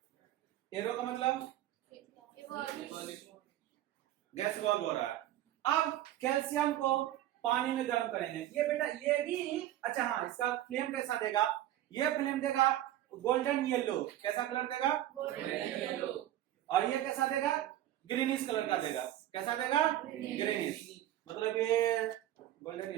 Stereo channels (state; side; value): quieter; left; 13.4 dB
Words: एरो का मतलब गैस इवॉल्व हो रहा है। अब कैल्शियम को पानी में गर्म करेंगे। ये बेटा ये भी अच्छा, हाँ, इसका फ्लेम कैसा देगा? ये फ्लेम देगा गोल्डन येलो। कैसा कलर देगा? Golden yellow. और ये कैसा देगा? ग्रीनिश कलर का देगा। कैसा देगा? ग्रीनिश। मतलब ये गोल्डन